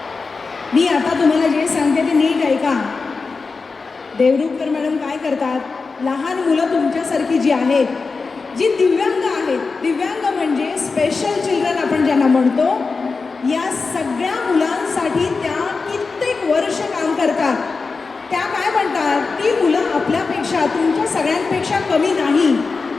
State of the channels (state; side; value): quieter; right; 4.4 dB